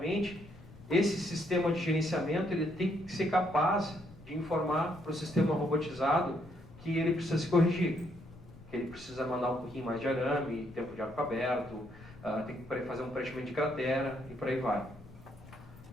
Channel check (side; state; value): left; noise; rumble, 19 dB below the sound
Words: esse sistema de gerenciamento ele tem que ser capaz de informar para o sistema robotizado que ele precisa se corrigir, que ele precisa mandar um pouquinho mais de arame, tempo de arco aberto, tem que fazer um preenchimento de cratera e por aí vai.